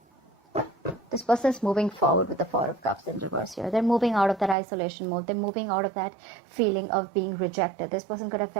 This person is moving forward with the Four of Cups in reverse here. They're moving out of that isolation mode. They're moving out of that feeling of being rejected. This person could have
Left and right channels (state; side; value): drops out; left; at 4.5 s